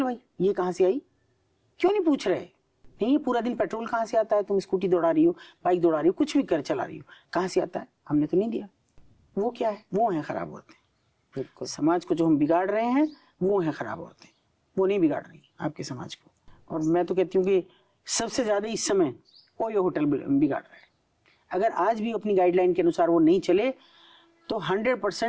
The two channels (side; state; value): both; identical; correlation 1.00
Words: ये कहाँ से आई? क्यों नहीं पूछ रहे? नहीं, पूरा दिन पेट्रोल कहाँ से आता है? तुम स्कूटी दौड़ा रही हो, बाइक दौड़ा रही हो, कुछ भी कर चला रही हो, कहाँ से आता है? हमने तो नहीं दिया। वो क्या है? वो है खराब औरतें। बिल्कुल, समाज को जो हम बिगाड़ रहे हैं वो है खराब औरतें, वो नहीं बिगाड़ रही आपके समाज को। और मैं तो कहती हूँ कि सबसे ज्यादा इस समय ओयो होटल बिगाड़ रहा है। अगर आज भी अपनी गाइडलाइन के अनुसार वो नहीं चले तो